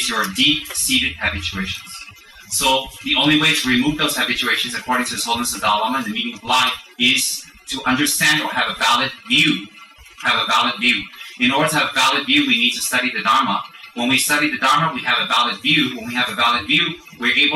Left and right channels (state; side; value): identical; both; correlation 1.00